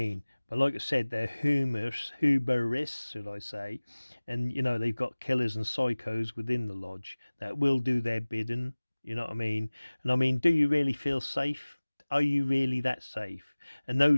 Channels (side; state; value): both; inverted; correlation -1.00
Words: But like I said, they're huberists, should I say? And you know, they've got killers and psychos within the lodge that will do their bidding. You know what I mean? And I mean, do you really feel safe? Are you really that safe? And